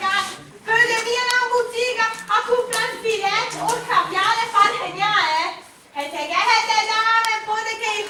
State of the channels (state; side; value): identical; both; correlation 1.00